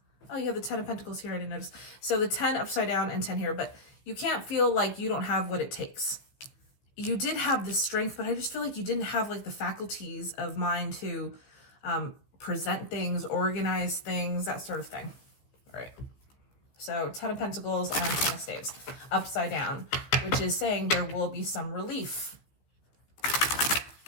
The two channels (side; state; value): right; late; 15 ms